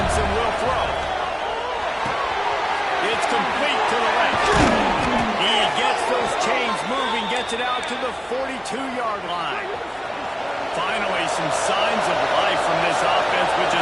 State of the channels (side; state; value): both; identical; correlation 1.00